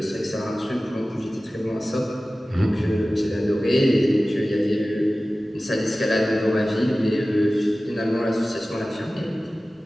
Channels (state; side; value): normal; both; correlation 0.96